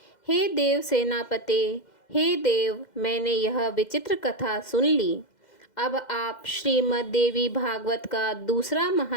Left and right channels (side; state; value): right; late; 2.0 ms